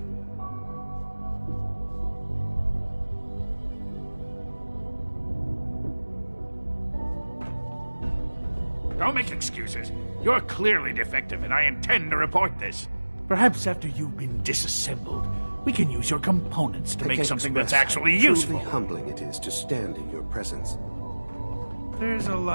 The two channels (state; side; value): inverted; both; correlation -1.00